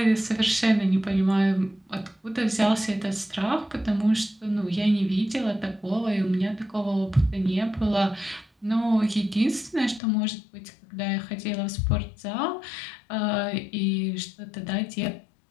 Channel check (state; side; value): drops out; right; at 10.0 s